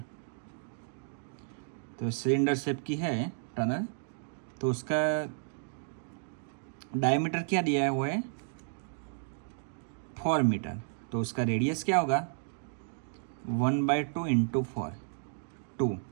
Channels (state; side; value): silent; left; digital silence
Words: तो सिलेंडर शेप की है टनल। तो उसका डायमीटर क्या दिया हुआ है, 4 मीटर। तो उसका रेडियस क्या होगा, 1/2 × 4, 2।